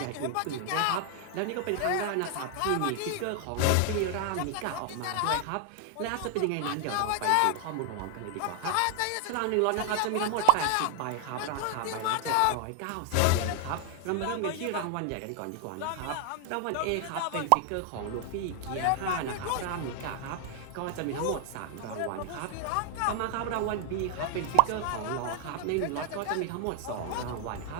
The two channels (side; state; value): both; different; correlation 0.00